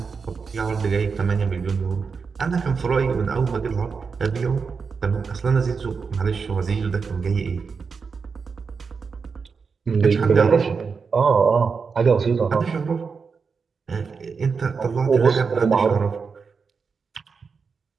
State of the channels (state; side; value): quieter; left; 5.3 dB